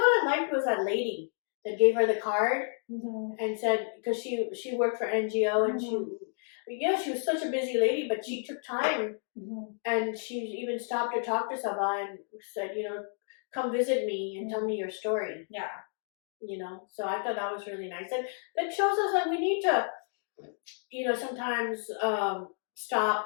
I liked was that lady that gave her the card and said, because she worked for NGO and she Yeah, she was such a busy lady, but she took time, and she even stopped to talk to Sabah and said, come visit me and tell me your story. Yeah. So I thought that was really nice. And that shows us that we need to, sometimes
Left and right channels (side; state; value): right; silent; 57 dB below the other